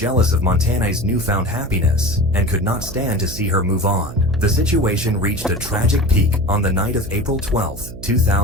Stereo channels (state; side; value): noise; right; hum, 13 dB below the sound